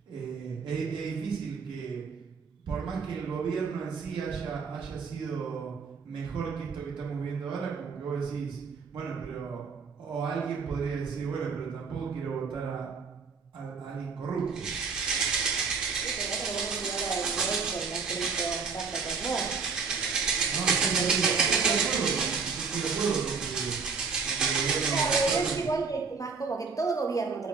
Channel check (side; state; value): left; quieter; 5.1 dB